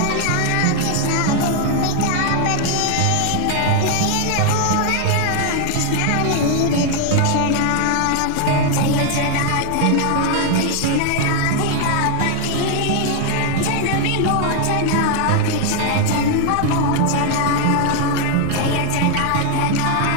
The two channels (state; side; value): different; both; correlation 0.00